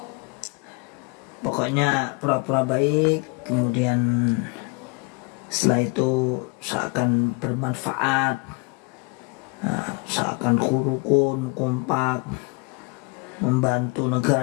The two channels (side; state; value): right; quieter; 29.6 dB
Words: Pokoknya pura-pura baik, kemudian setelah itu seakan bermanfaat, seakan rukun, kompak, membantu